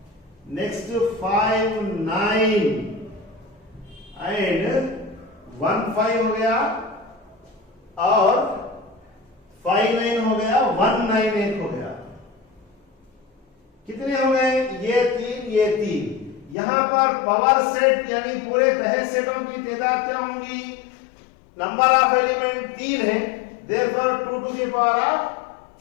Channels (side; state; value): right; drops out; at 16.6 s